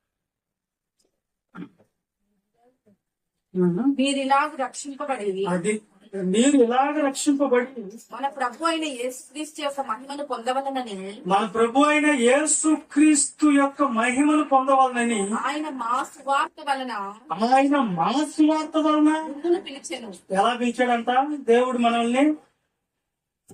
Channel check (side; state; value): both; identical; correlation 1.00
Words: మీరు ఇలాగ రక్షింపబడి అది మీరు ఇలాగ రక్షింపబడి మన ప్రభు అయిన యేసుక్రీస్తు యొక్క మహిమను పొందవలనని మన ప్రభు అయిన యేసుక్రీస్తు యొక్క మహిమను పొందవాలని ఆయన మా సువార్త వలన ముందును పిలిచెను. ఎలా పిలిచాడంట దేవుడు మనల్ని?